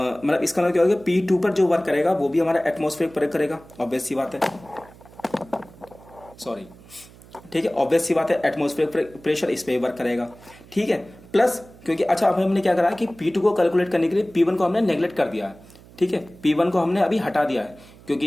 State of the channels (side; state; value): right; noise; hum, 23 dB below the sound